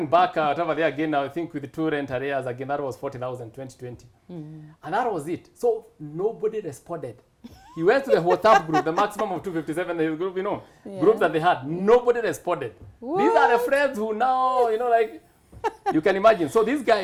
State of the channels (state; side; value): identical; both; correlation 1.00